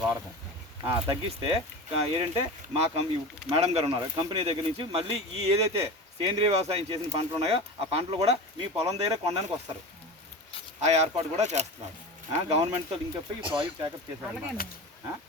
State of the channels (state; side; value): normal; both; correlation 0.29